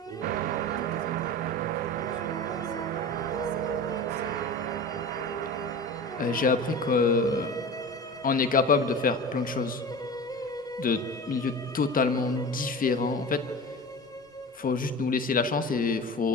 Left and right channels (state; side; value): normal; both; correlation 0.33